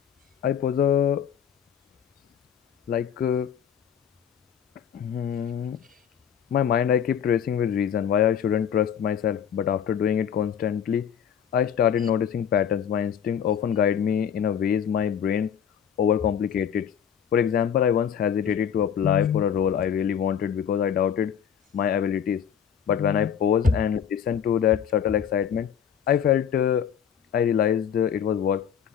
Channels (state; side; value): quieter; right; 8.3 dB